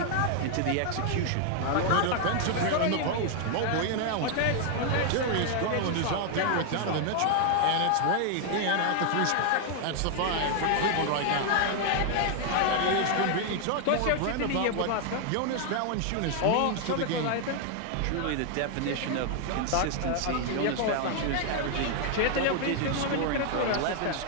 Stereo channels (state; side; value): different; both; correlation 0.00